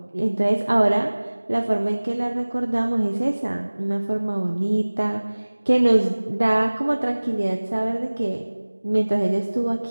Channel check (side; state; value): both; inverted; correlation -1.00